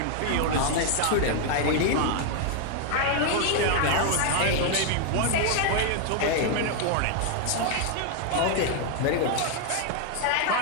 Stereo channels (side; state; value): both; different; correlation 0.00